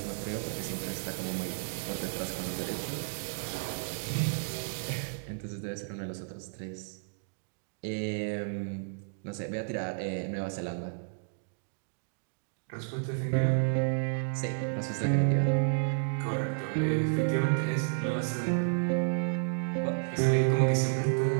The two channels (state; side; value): silent; left; digital silence